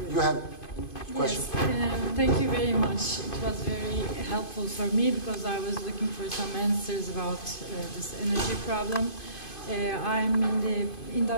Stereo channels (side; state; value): right; late; 2.5 ms